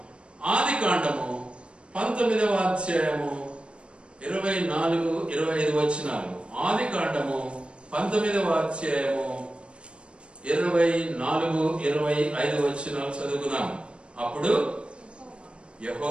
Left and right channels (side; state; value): left; late; 0.057 ms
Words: ఆది కాండము 19వ అధ్యాయము 24-25 వచనాలు. ఆది కాండము 19వ అధ్యాయము 24-25 వచనాలు చదువుకుందాం. అప్పుడు